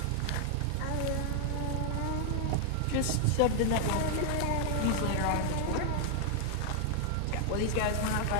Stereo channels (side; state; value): both; different; correlation 0.00